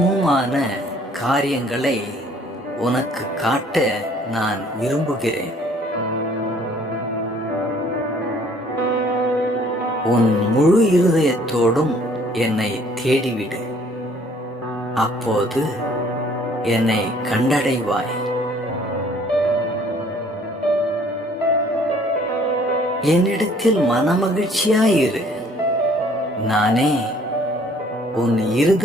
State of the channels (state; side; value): normal; both; correlation 0.58